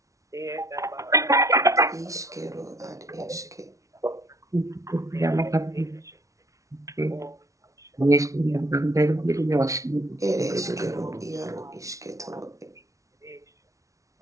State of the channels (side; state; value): left; late; 0.16 ms